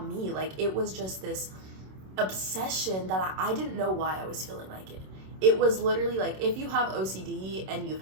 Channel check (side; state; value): left; late; 27 ms